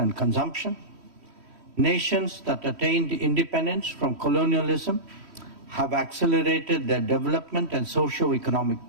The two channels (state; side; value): late; left; 3.1 ms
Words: and consumption. Nations that attained independence from colonialism have accelerated their development and socio-economic